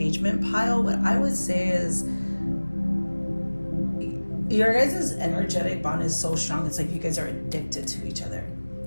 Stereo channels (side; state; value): both; inverted; correlation -1.00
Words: pile, what I would say is your guys' energetic bond is so strong. It's like you guys are addicted to each other.